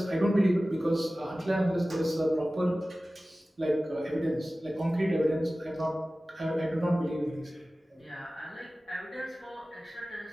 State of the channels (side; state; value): both; normal; correlation 0.96